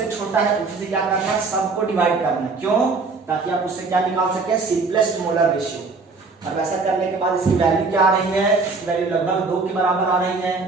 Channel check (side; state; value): left; quieter; 4.1 dB